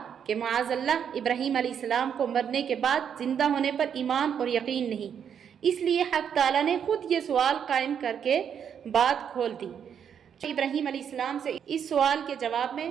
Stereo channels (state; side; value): quieter; left; 8.1 dB